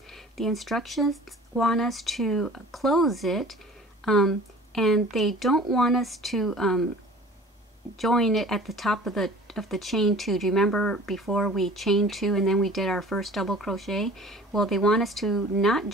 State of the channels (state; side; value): normal; both; correlation 0.45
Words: the instructions want us to close it, and they don't want us to join it at the top of the chain 2. Do you remember before we chained 2 and then we did our first double crochet? Well, they want us to not